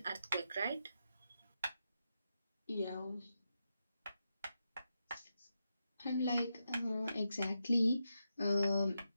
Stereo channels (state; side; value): inverted; both; correlation -0.86